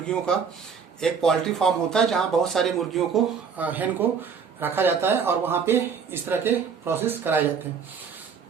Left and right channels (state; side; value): quieter; left; 6.2 dB